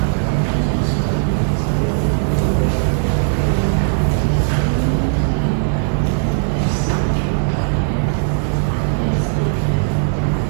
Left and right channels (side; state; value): left; silent; digital silence